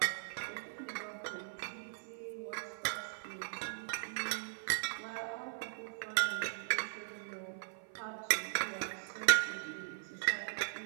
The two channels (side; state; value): left; silent; 52 dB below the other